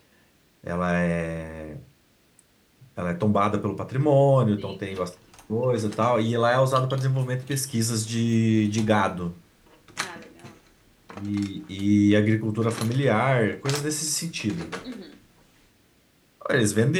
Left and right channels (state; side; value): identical; both; correlation 1.00